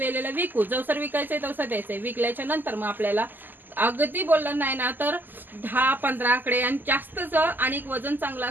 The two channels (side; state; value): left; late; 0.089 ms